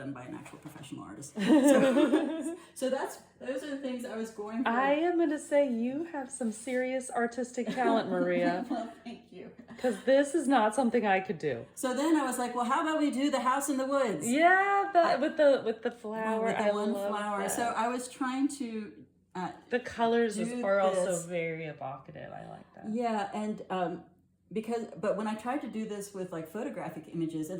by an actual professional artist. So those are the things I was going for. I am going to say you have some serious artistic talent, Maria. Well, thank you. Because this is not something I could do. So then I was like, well, how about we do the house in the woods? Yeah, with the flower. With the I one love flower. that. So I was trying to the colors are this. also very evocative. I like that. Yeah, and but when I tried to do this with like photographic images,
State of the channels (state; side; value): identical; both; correlation 1.00